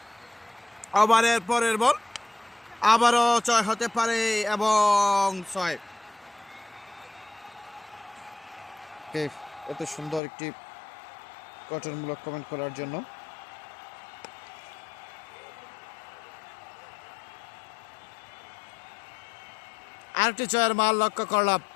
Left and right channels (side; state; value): right; drops out; at 10.2 s